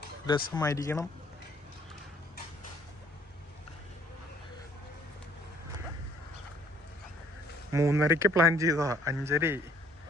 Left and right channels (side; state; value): both; normal; correlation 0.61